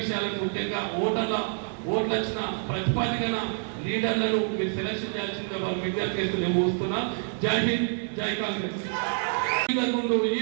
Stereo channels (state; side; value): silent; left; 60 dB below the other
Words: ముఖ్యంగా ఓట్లు వచ్చిన ప్రతిపాదికన లీడర్లను మీరు సెలక్షన్ చేయాల్సిందే వారు విజ్ఞప్తి చేస్తూ నేను చూస్తున్నా. జై హింద్, జై కాంగ్రెస్. ఈ